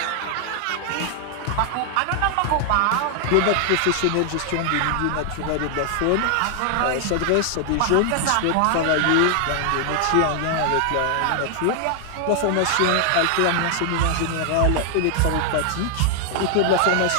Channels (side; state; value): both; different; correlation 0.00